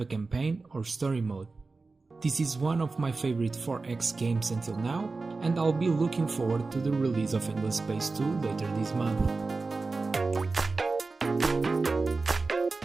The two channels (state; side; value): quieter; left; 3.8 dB